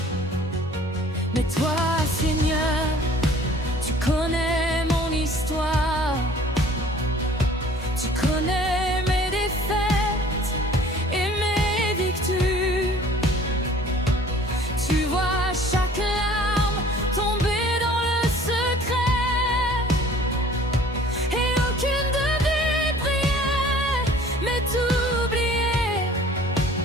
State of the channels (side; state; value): both; normal; correlation 0.51